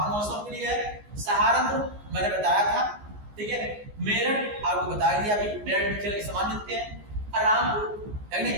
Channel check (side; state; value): left; late; 14 ms